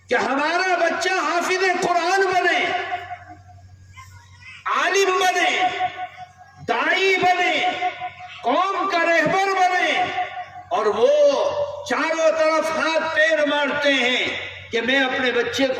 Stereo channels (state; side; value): identical; both; correlation 1.00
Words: کہ ہمارا بچہ حافظ قرآن بنے، عالم بنے، داعی بنے، قوم کا رہبر بنے، اور وہ چاروں طرف ہاتھ پیر مارتے ہیں کہ میں اپنے بچے